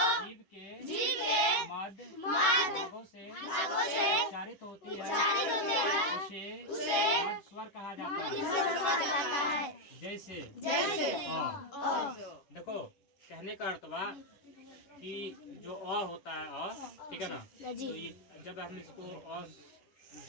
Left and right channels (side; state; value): right; late; 11 ms